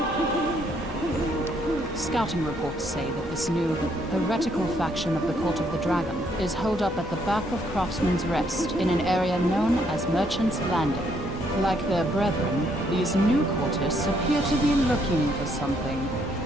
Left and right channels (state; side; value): normal; both; correlation 0.70